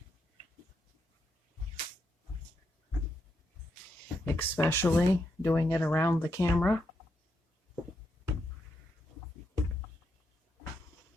Especially doing it around the camera.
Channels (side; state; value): both; normal; correlation 0.81